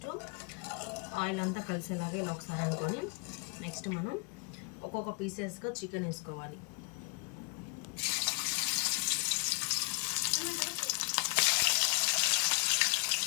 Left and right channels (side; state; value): right; quieter; 34.8 dB